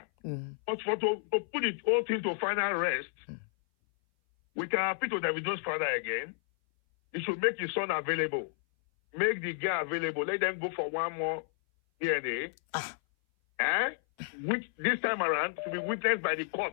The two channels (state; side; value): silent; right; 57 dB below the other